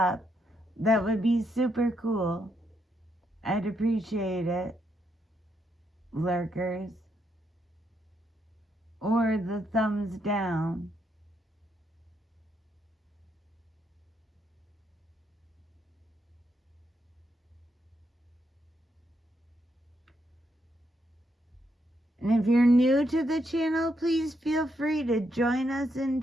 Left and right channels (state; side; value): normal; both; correlation 0.78